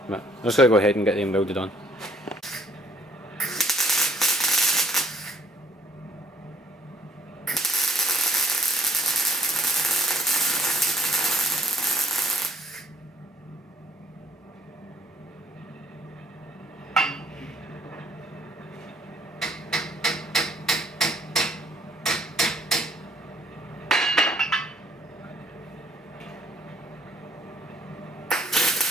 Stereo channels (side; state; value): both; normal; correlation 0.65